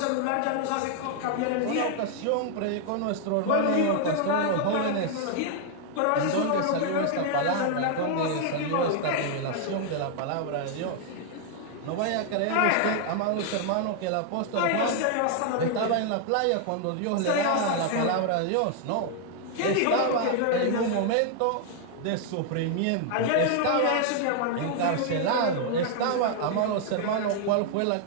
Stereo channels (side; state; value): both; different; correlation 0.00